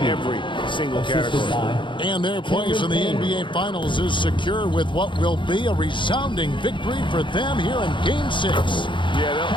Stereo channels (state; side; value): late; right; 0.23 ms